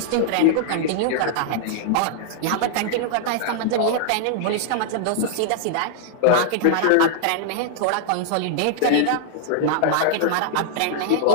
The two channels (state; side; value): different; both; correlation -0.01